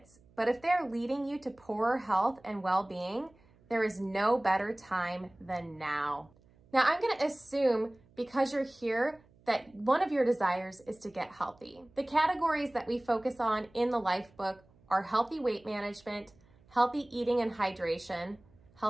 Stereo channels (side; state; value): right; noise; hum, 29 dB below the sound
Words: but if they're leading you to poorer health and well-being, there is no better time than now. Now, I'm going to assume because you're here that one of your desires is to get healthy. The categories that we focus on in the life book are healthy weight management, healthy eating and hydration,